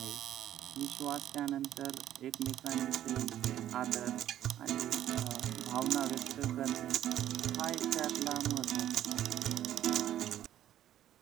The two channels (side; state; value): left; quieter; 11.9 dB